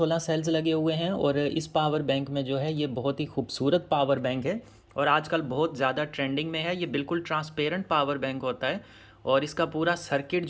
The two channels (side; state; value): both; identical; correlation 1.00